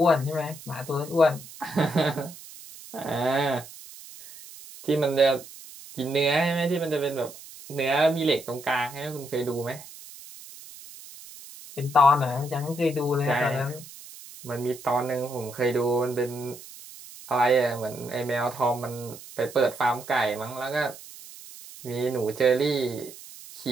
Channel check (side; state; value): right; noise; hiss, 17 dB below the sound